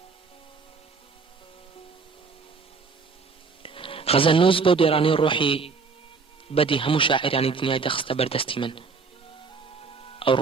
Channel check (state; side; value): quieter; left; 4.8 dB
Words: غەزەلنووس بەو دێرانی ڕۆحی بەدی هەموو شاعرانی دنیای دەخستە بەردەستی من. ئەو